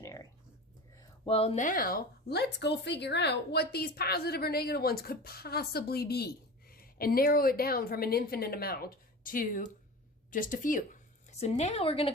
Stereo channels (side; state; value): both; normal; correlation 0.33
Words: Well, now let's go figure out what these positive or negative ones could possibly be and narrow it down from an infinite amount to just a few. So now we're going to